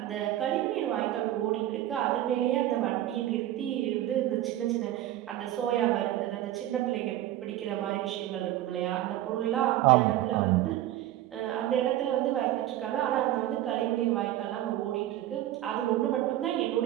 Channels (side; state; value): left; quieter; 13.7 dB